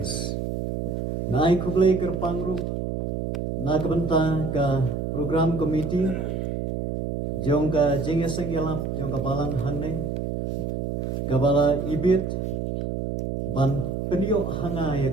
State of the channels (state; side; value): noise; right; hum, 2 dB below the sound